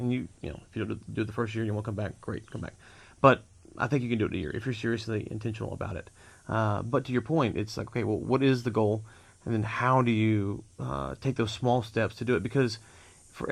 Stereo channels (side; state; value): both; identical; correlation 1.00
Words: if you don't do it the first year and you want to come back, great, come back. But I think you can do it in a year if you're seriously intentional about it. But to your point, it's like, okay, well, what is the goal? And then how do you take those small steps to do it? Because for